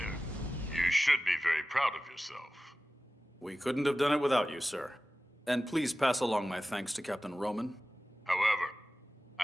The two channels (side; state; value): both; normal; correlation 0.96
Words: You should be very proud of yourself. We couldn't have done it without you, sir. And please pass along my thanks to Captain Roman. However,